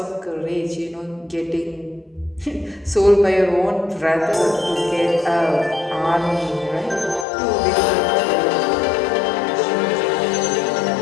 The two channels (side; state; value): right; drops out; at 7.2 s